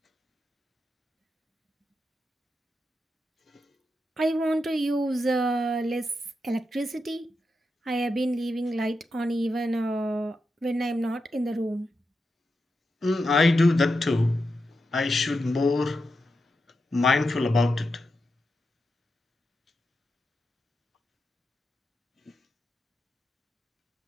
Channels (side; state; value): both; normal; correlation 0.87